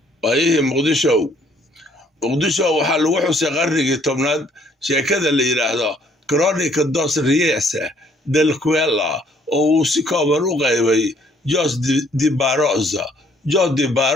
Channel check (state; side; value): normal; both; correlation 0.63